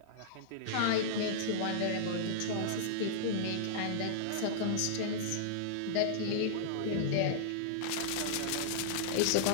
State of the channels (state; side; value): different; both; correlation -0.02